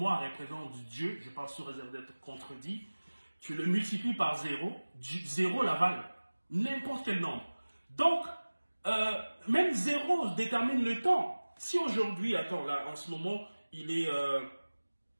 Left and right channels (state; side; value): inverted; both; correlation -1.00